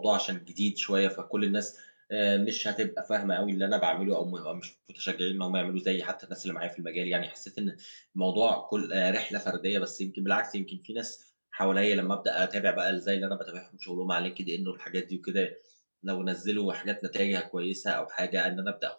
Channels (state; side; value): inverted; both; correlation -1.00